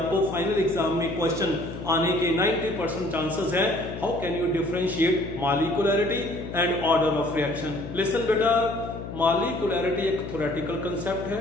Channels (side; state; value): left; noise; hum, 9 dB below the sound